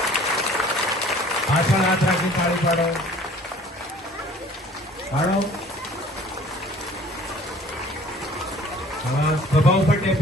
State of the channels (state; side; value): normal; both; correlation 0.51